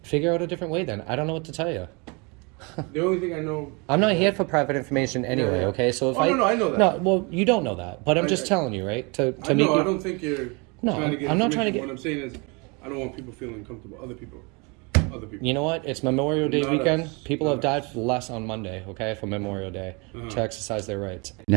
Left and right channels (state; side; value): quieter; left; 30.0 dB